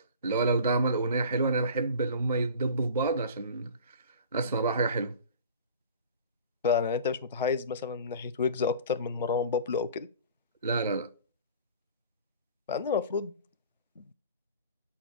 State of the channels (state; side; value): inverted; both; correlation -0.41